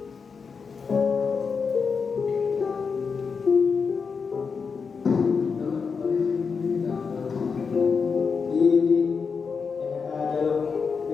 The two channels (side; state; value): right; quieter; 5.5 dB